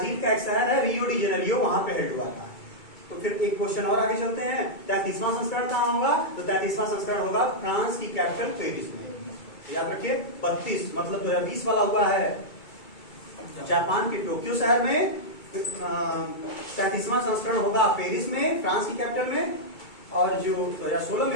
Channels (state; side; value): late; right; 2.3 ms